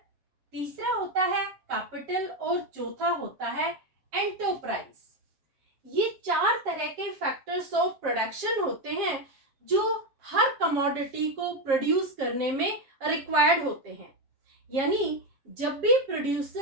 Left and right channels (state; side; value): late; left; 7.4 ms